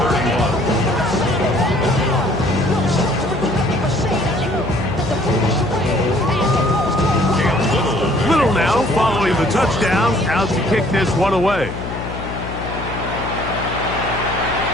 31. Little now following the touchdown, out to kick this one away.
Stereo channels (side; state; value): left; noise; hum, 7 dB below the sound